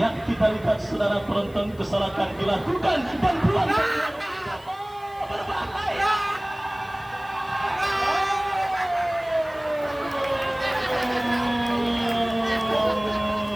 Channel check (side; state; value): left; noise; hiss, 27 dB below the sound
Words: kita lihat saudara penonton, kesalahan dilakukan dan peluang berbahaya.